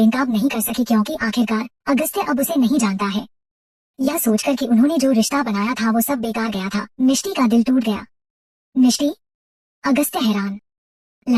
नहीं कर सकी क्योंकि आखिरकार अगस्त्य अब उसे नहीं जानता है। यह सोचकर कि उन्होंने जो रिश्ता बनाया था वो सब बेकार गया था, मिष्टी का दिल टूट गया। मिष्टी? अगस्त्य हैरान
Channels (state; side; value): identical; both; correlation 1.00